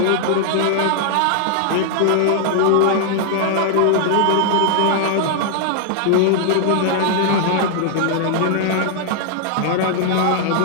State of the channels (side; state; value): both; different; correlation -0.01